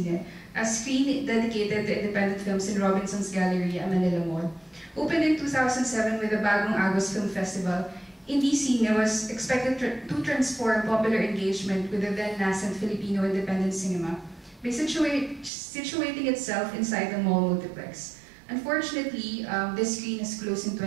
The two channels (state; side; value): drops out; left; at 15.5 s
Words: a screen dedicated to independent films in Robinson's Gallery at Manila Mall. Opened in 2007 with the Bagong Agos Film Festival, Indie Cine was expected to transform popular engagement with the then-nascent Filipino independent cinema by situating itself inside the mall multiplex. Unfortunately, this screen has closed in